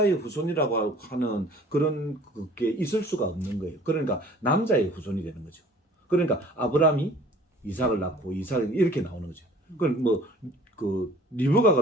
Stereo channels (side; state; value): both; normal; correlation 0.50